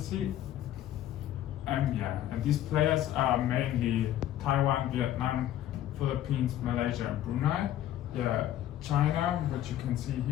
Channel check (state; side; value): quieter; right; 12.4 dB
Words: And these players are mainly Taiwan, Vietnam, Philippines, Malaysia, and Brunei. China, which you can see